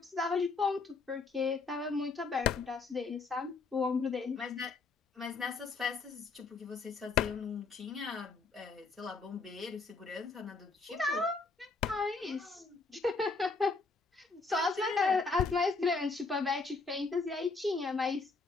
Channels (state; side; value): quieter; right; 4.2 dB